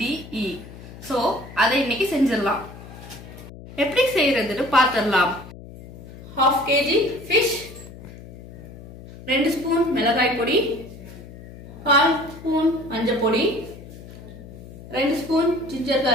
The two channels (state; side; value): noise; left; hum, 16 dB below the sound